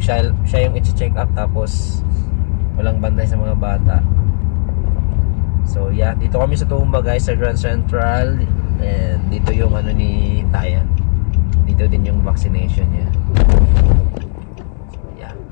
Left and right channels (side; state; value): right; silent; 67 dB below the other